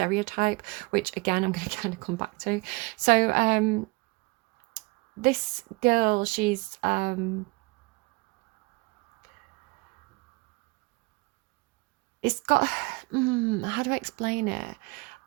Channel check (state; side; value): quieter; left; 25.7 dB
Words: which again I'm going to kind of come back to. So this girl, she's it's got how do I explain it?